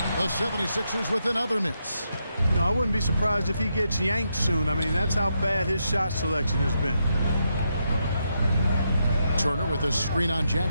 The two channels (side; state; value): both; inverted; correlation -0.81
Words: The 76ers with another miss. You know, I wouldn't be surprised if he gets yanked soon. I mean, that's how bad his shot selection has been. Turner with a screen on